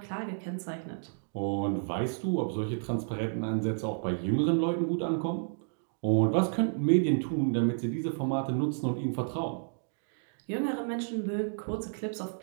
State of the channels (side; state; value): left; silent; digital silence